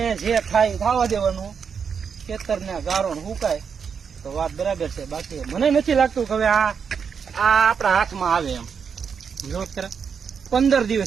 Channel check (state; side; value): quieter; left; 6.6 dB